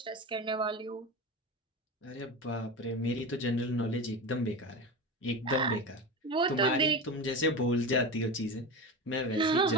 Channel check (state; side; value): normal; both; correlation 0.24